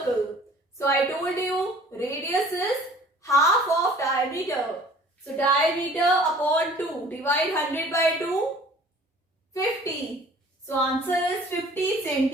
So I told you radius is half of diameter. So diameter upon 2. Divide 100 by 2. 50. So answer is 50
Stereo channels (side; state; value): both; normal; correlation 0.50